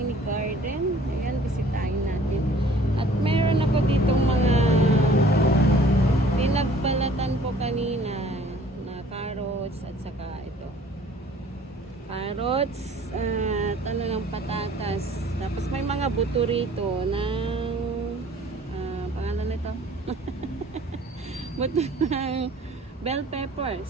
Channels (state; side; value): normal; both; correlation 0.53